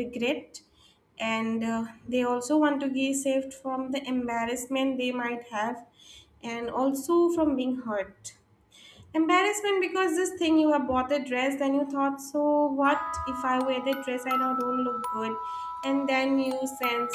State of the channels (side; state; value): both; identical; correlation 1.00